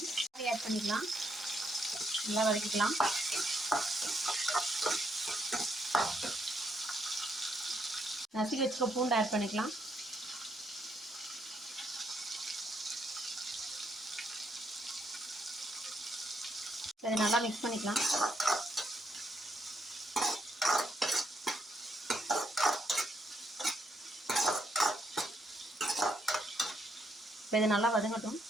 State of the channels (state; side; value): normal; both; correlation 0.76